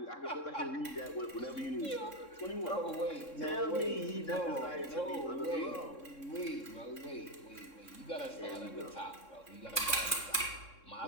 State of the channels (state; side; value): late; right; 3.6 ms